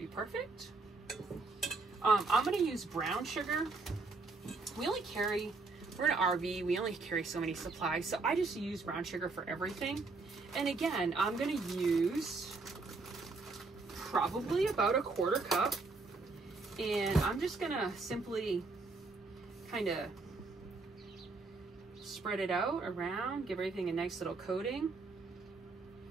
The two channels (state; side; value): quieter; left; 3.8 dB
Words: be perfect. I'm going to use brown sugar. We're in an RV, we only carry so many supplies, so I just use brown sugar for everything. And again, I'm going to use probably about a quarter cup, and I'm just going to simply kind of spread it out around, give everything a nice little coating.